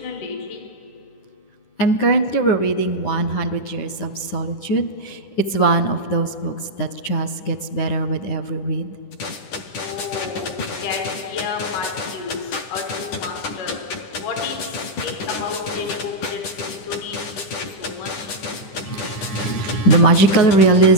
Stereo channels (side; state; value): right; late; 10 ms